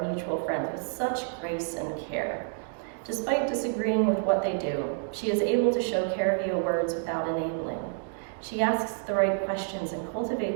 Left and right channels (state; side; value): silent; left; digital silence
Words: mutual friend with such grace and care. Despite disagreeing with what they do, she is able to show care via words without enabling. She asks the right questions and